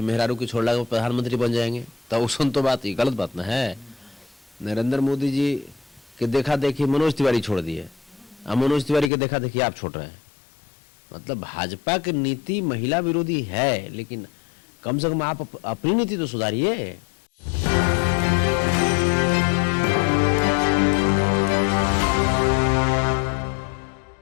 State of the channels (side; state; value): right; drops out; at 9.1 s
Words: मेहरारू की छोड़ला के प्रधानमंत्री बन जाएंगे, तो सुन तो बात ये गलत बात ना है। नरेंद्र मोदी जी के देखा देखी मनोज तिवारी छोड़ दिए, अब मनोज तिवारी के देखा देखी आप छोड़ रहे हैं। मतलब भाजपा की नीति महिला विरोधी है, लेकिन कम से कम आप अपनी नीति तो सुधारिए।